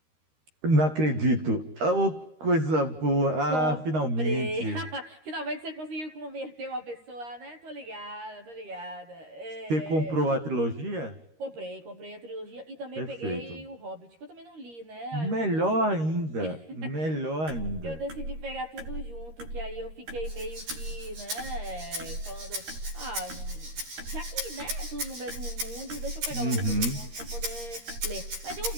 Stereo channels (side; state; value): left; late; 13 ms